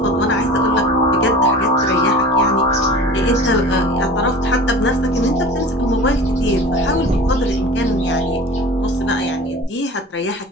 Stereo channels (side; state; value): both; normal; correlation 0.38